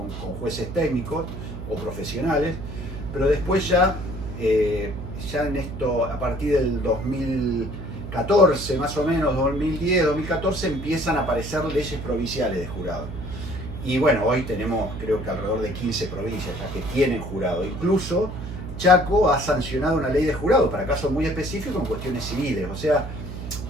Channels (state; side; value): noise; right; hum, 9 dB below the sound